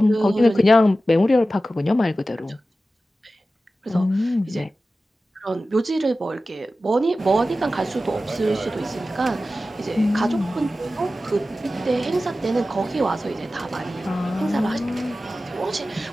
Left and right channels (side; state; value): both; normal; correlation 0.94